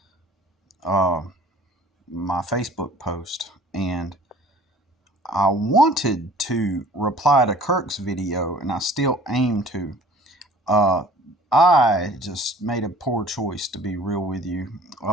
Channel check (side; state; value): both; normal; correlation 0.50